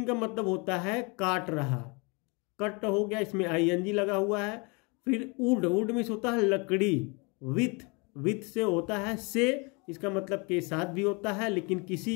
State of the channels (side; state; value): right; quieter; 30.1 dB